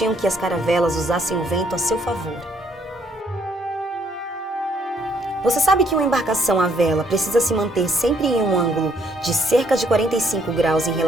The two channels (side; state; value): both; normal; correlation 0.68